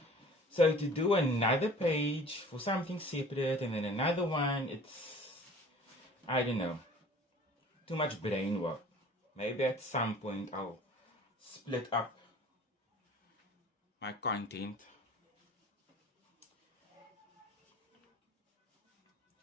So to do another page for something separate and then another one, it's, I don't know, too much brain work. Maybe at some point I'll split up my content.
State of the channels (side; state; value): both; normal; correlation 0.47